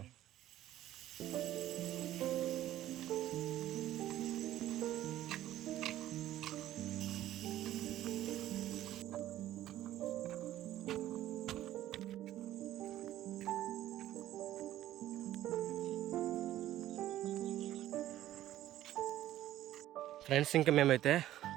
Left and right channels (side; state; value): left; quieter; 13.5 dB